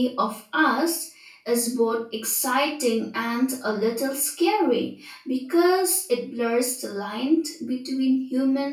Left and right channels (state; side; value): identical; both; correlation 1.00